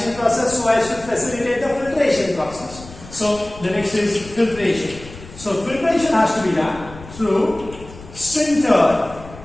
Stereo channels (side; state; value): left; noise; rumble, 17 dB below the sound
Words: process so as to facilitate the filtration process. So the next is filtration. So filtration has to be done through sintered